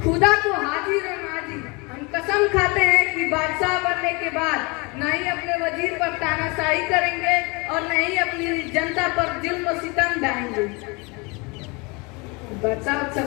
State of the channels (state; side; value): quieter; right; 28.2 dB